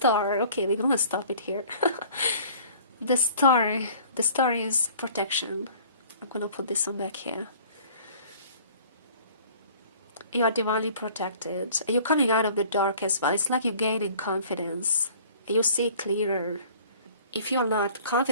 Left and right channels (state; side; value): inverted; both; correlation -0.50